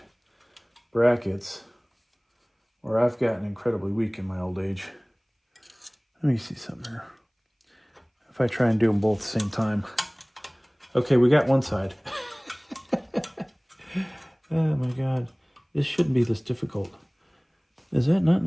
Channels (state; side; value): identical; both; correlation 1.00